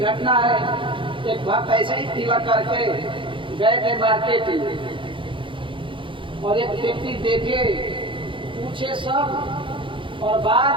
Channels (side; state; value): left; late; 0.25 ms